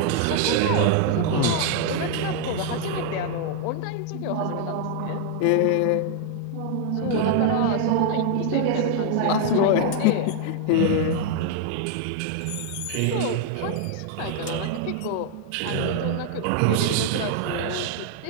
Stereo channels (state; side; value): different; both; correlation 0.00